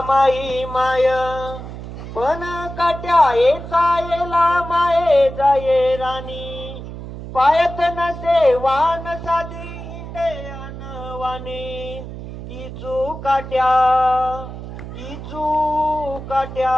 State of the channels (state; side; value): noise; right; hum, 10 dB below the sound